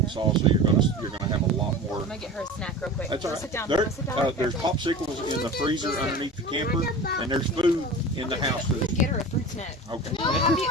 so you're gonna have a lot more. I'm gonna get her a snack real quick. That's all Go right. sit down. There, Go sit down. there's popsicles in the freezer underneath the camper, and there's food in the house. Get her a fruit snack. Okay.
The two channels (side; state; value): both; normal; correlation 0.34